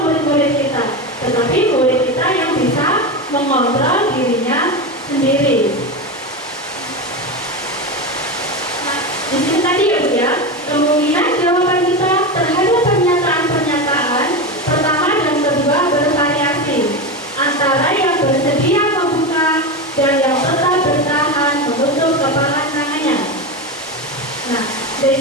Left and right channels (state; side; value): normal; both; correlation 0.18